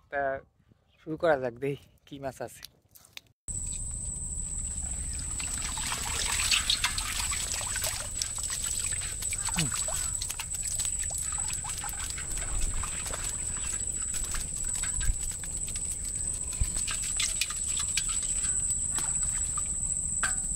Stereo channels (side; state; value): both; identical; correlation 1.00